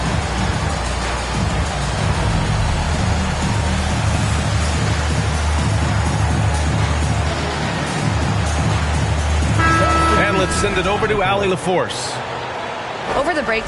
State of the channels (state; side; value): identical; both; correlation 1.00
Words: Send it over to Allie LaForce. Over the break,